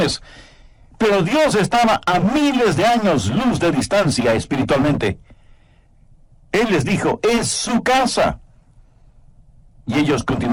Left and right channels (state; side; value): identical; both; correlation 1.00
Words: Pero Dios estaba a miles de años luz de distancia espiritualmente. Él les dijo: «es su casa». Y ellos